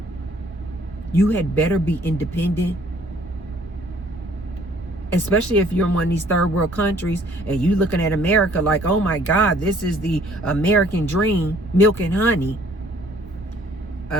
You had better be independent. Especially if you're in one of these third world countries and you looking at America like, oh my God, this is the American dream, milk and honey.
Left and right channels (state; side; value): normal; both; correlation 0.59